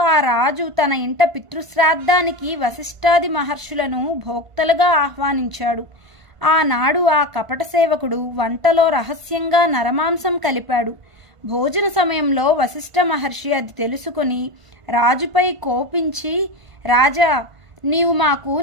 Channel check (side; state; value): left; late; 1.5 ms